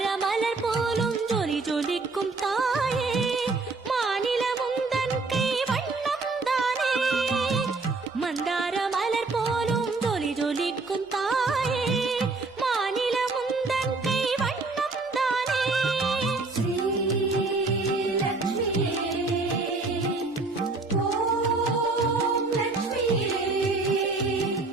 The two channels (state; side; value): quieter; left; 3.6 dB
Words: மலர் போலும் ஜொலி ஜொலிக்கும் தாயே, மாநிலமும் தன் கை வண்ணம் தானே. மந்தார மலர் போலும் ஜொலி ஜொலிக்கும் தாயே, மாநிலமும் தன் கை வண்ணம் தானே. ஸ்ரீலக்ஷ்மியே, ஓம் லக்ஷ்மியே,